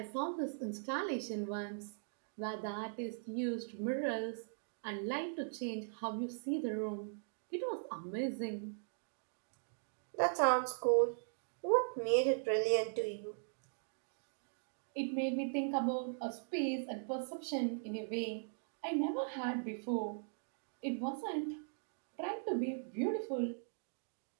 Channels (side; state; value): left; silent; digital silence